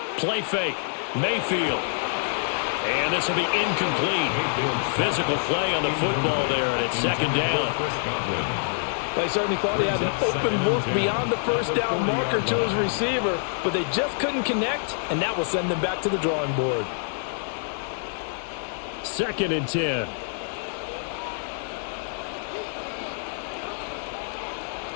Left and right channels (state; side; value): silent; right; digital silence